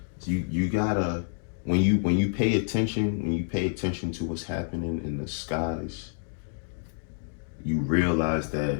You gotta, when you pay attention to what's happening in the skies, you realize that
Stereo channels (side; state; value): right; silent; digital silence